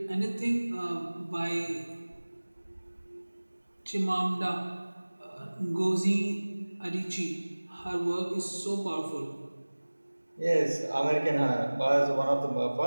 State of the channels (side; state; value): both; inverted; correlation -1.00